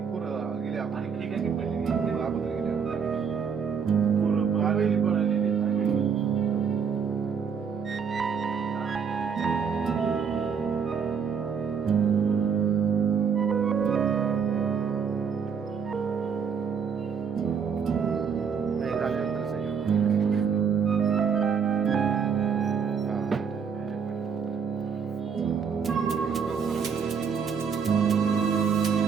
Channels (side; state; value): left; quieter; 6.6 dB